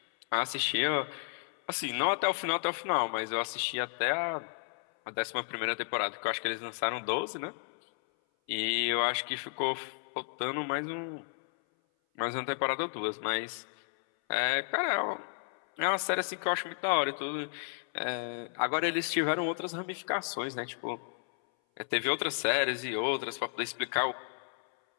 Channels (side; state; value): right; silent; 56 dB below the other